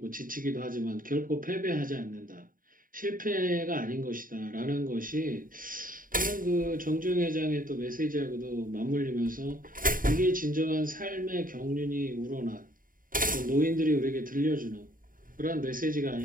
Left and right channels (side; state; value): left; late; 0.40 ms